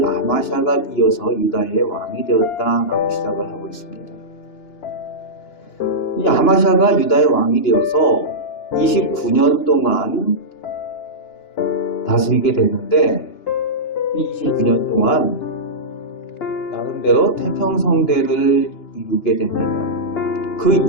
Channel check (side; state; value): right; late; 2.9 ms